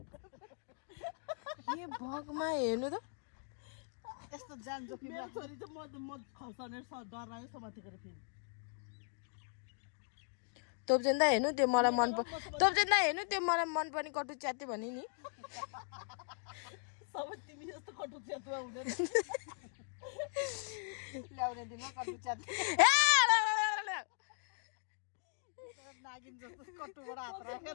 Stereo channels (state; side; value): silent; right; 52 dB below the other